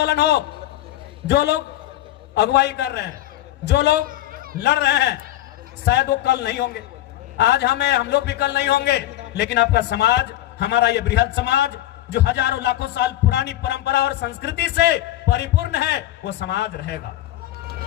हो, जो लोग अगुवाई कर रहे हैं, जो लोग लड़ रहे हैं, शायद वो कल नहीं होंगे, आज हम लोग भी कल नहीं होंगे, लेकिन आपका समाज, हमारा ये बृहद समाज जो हजारों लाखों साल पुरानी परंपरा और संस्कृति से परिपूर्ण है, वो समाज रहेगा।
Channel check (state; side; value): quieter; right; 14.2 dB